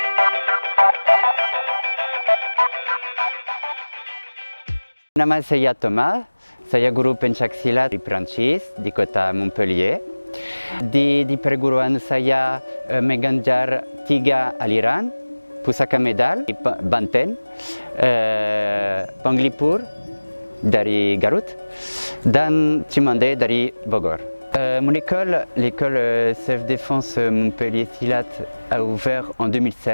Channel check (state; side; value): inverted; both; correlation -1.00